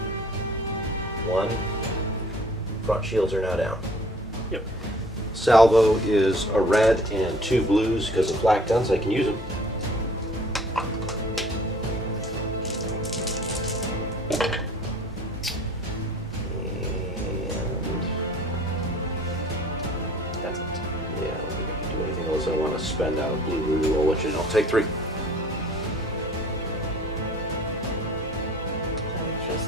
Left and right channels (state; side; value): normal; both; correlation 0.51